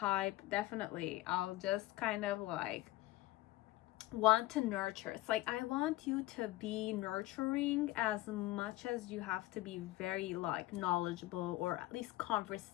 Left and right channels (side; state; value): right; quieter; 17.7 dB